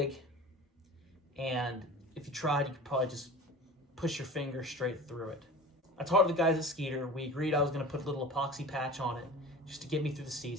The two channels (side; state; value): both; normal; correlation 0.37